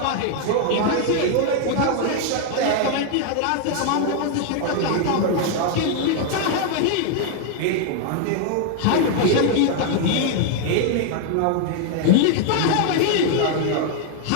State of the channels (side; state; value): both; different; correlation 0.00